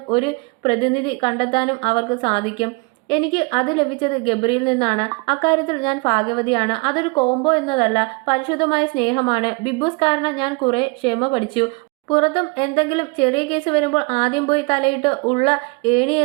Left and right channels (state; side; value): quieter; left; 28.9 dB